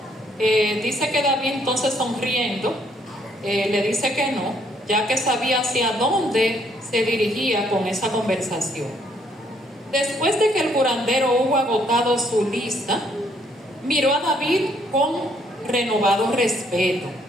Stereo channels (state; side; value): normal; both; correlation 0.68